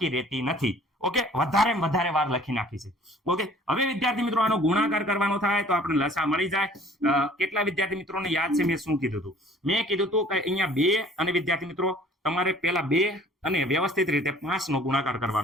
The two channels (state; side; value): normal; both; correlation 0.52